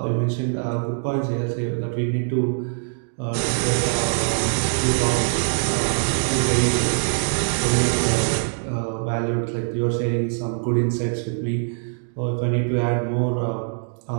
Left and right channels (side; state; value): left; silent; 63 dB below the other